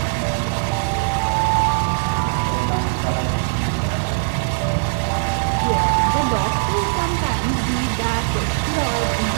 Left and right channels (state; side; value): silent; left; digital silence